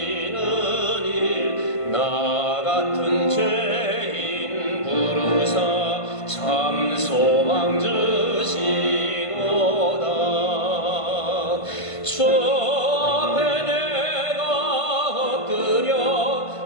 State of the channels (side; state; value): right; late; 1.5 ms